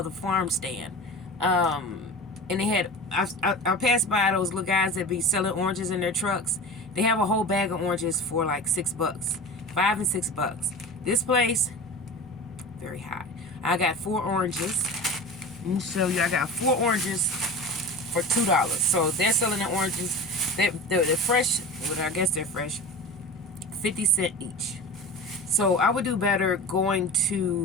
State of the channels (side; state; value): both; normal; correlation 0.32